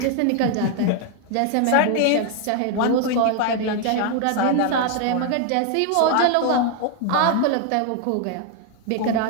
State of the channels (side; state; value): both; different; correlation 0.00